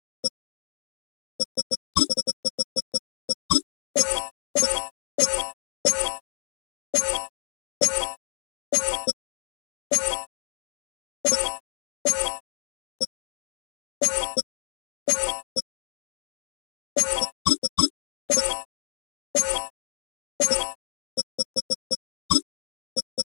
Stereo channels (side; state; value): right; silent; digital silence